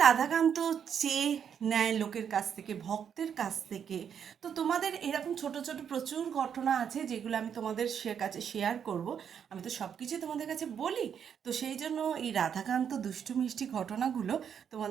রাধাকান্ত চেয়ে নেয় লোকের কাছ থেকে, ভক্তের কাছ থেকে। তো তোমাদের এরকম ছোট ছোট প্রচুর ঘটনা আছে, যেগুলো আমি তোমাদের কাছে শেয়ার করব। আমি তো সব কিছুই তোমাদের কাছে বলি। তো সেই জন্য এই রাধাকান্ত দুষ্টু মিষ্টি ঘটনাগুলো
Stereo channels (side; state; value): left; quieter; 8.0 dB